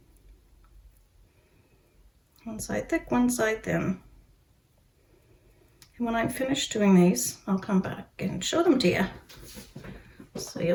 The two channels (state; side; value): identical; both; correlation 1.00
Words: One side thick, one side thin. And when I'm finished doing these, I'll come back and show them to you. So